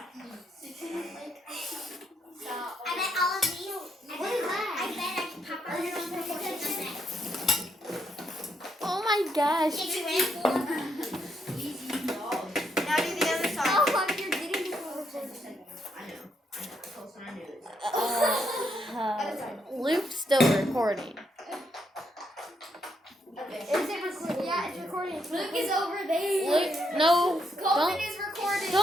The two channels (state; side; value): normal; both; correlation 0.77